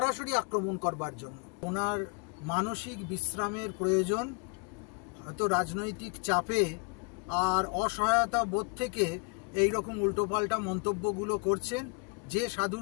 আক্রমণ করবার জন্য। ওনার মানসিক বিশ্রামের প্রয়োজন। হয়তো রাজনৈতিক চাপে আর অসহায়তা বোধ থেকে এই রকম উল্টোপাল্টা মন্তব্যগুলো করছেন। যে সাধু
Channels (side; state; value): right; quieter; 35.5 dB